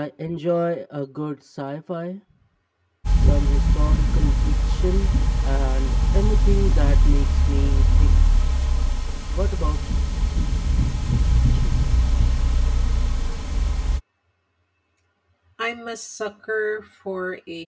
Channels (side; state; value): both; identical; correlation 1.00